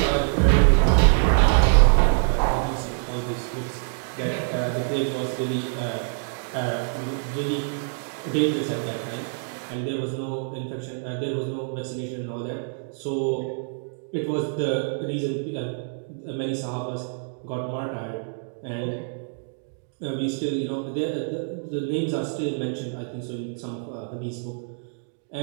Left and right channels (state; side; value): silent; left; digital silence